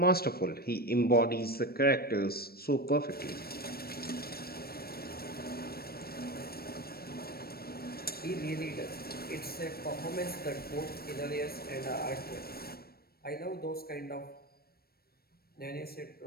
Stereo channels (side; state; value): right; late; 0.44 ms